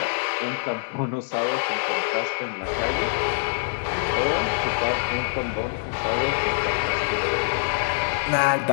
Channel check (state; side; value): silent; right; digital silence